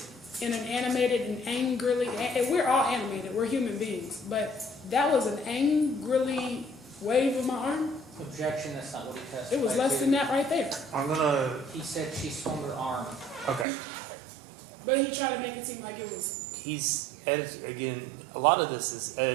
in an animated and angrily, and we're all animated, we're human beings, but that was an angrily wave of my arm. Objection, that's not what he testified It was less to. than that right there. I'm gonna, He said she swung her arm. okay. But he tried to make it seem like it was, Again, a lot of this is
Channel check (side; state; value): left; drops out; at 13.7 s